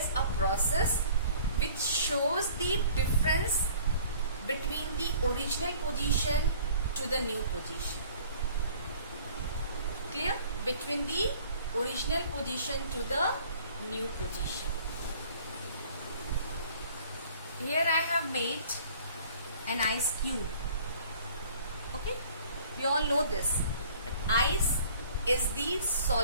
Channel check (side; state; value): both; inverted; correlation -0.52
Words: a process which shows the difference between the original position to the new position. Clear? Between the original position to the new position. Here I have made an ice cube. Okay, we all know this. Ice is the